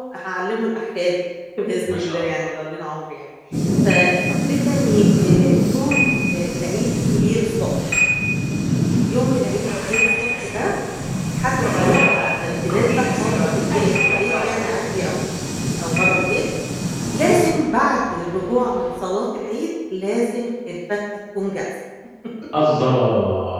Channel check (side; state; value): both; identical; correlation 1.00